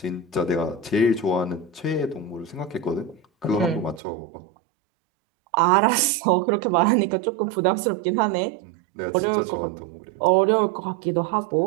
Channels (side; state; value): left; drops out; at 4.0 s